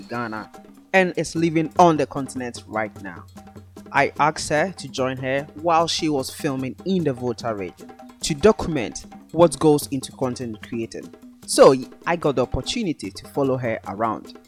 Ghana and is living on the continent right now. I asked her to join her while she was filming in the Volta region to document what goes into content creating. So I got the opportunity to follow her around,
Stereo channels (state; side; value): identical; both; correlation 1.00